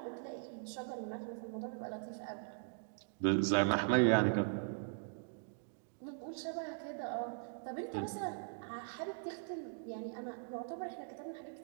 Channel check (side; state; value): left; silent; digital silence